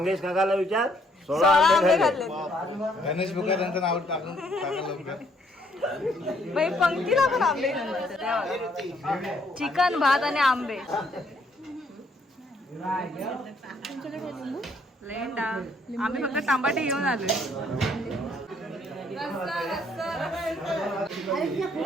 काकाला विचार 16 आंबे खाल्ले. गणेश बुका त्यांचं नाव टाकून टाका लवकर. बाई पंक्तीला पण आंबे चिकन भात आणि आंबे. लेंडा आम्ही फक्त टमाटे घेऊन आलोय.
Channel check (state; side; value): normal; both; correlation 0.68